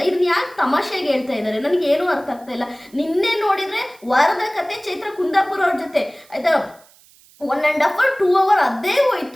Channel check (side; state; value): right; noise; hiss, 28 dB below the sound